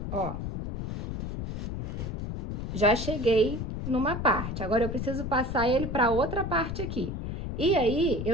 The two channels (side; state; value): left; noise; rumble, 4 dB below the sound